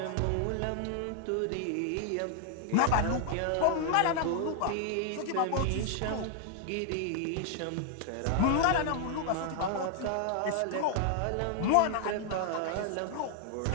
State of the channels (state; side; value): different; both; correlation 0.00